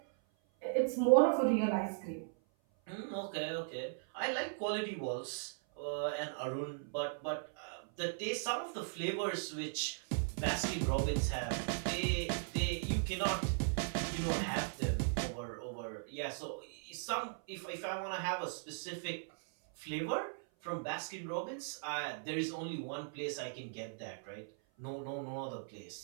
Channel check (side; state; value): left; silent; 52 dB below the other